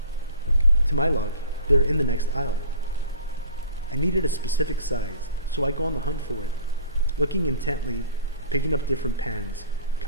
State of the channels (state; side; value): inverted; both; correlation -0.45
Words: To my luck, they're in the next aisle. I needed a specific size, so I go on the hunt for it, looking intently, picking up different pans,